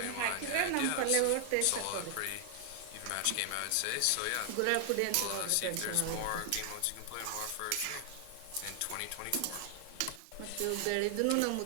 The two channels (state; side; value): different; both; correlation 0.00